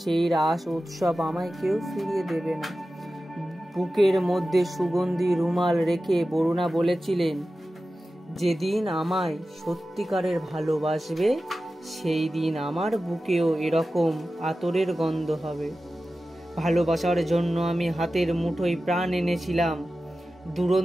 সেই রাস উৎসব আমায় কেউ ফিরিয়ে দেবে না। বুকের মধ্যে সুগন্ধি রুমাল রেখে বরুণা বলেছিলেন, যেদিন আমায় সত্যিকারের ভালোবাসবে সেই দিন আমার বুকেও এরকম আতরের গন্ধ হবে। ভালোবাসার জন্য আমি হাতের মুঠোয় প্রাণ এনেছিলাম।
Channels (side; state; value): both; normal; correlation 0.94